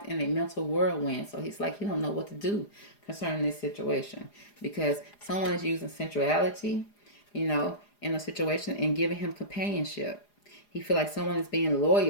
in a mental whirlwind. So he's like he don't know what to do concerning this situation because someone is using sensuality, in a situation and giving him companionship. He feel like someone is being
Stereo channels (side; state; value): right; late; 4.9 ms